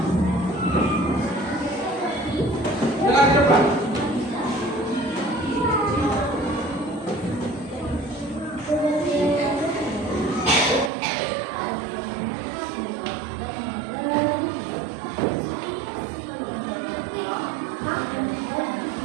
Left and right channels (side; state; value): left; drops out; at 10.9 s